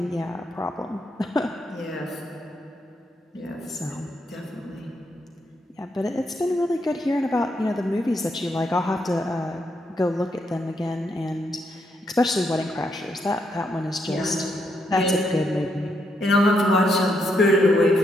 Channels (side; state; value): both; normal; correlation 0.78